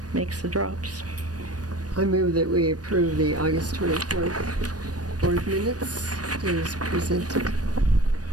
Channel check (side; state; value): left; late; 0.68 ms